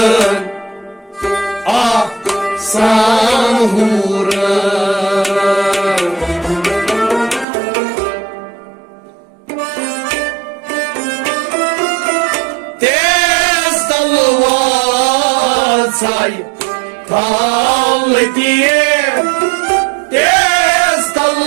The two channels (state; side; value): drops out; left; at 7.5 s